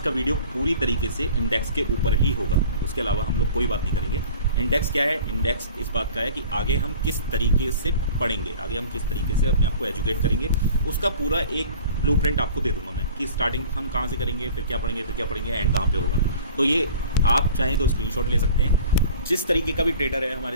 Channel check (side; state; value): both; inverted; correlation -0.44